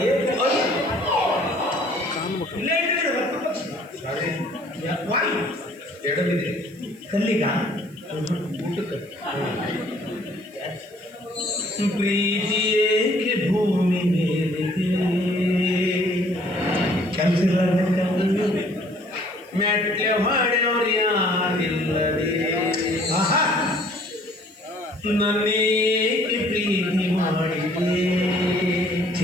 ಎಡಬಿದೆ ಕಲ್ಲಿಗ ಊಟಕ್ಕೆ ಪ್ರೀತಿಯೇಕೆ ಭೂಮಿ ಮೇಲಿದೆ ಕೆಲಸ ಮೆಟ್ಲೆ ಮಾಡ್ಯವ್ರು ಯಾರಿಲ್ಲದೆ ನನ್ನೇಕೆ ಪ್ರೀತಿ ಮಾಡಿದೆ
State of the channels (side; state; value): right; noise; hiss, 28 dB below the sound